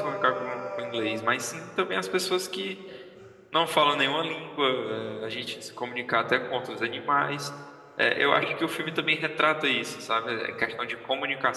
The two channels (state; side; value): identical; both; correlation 1.00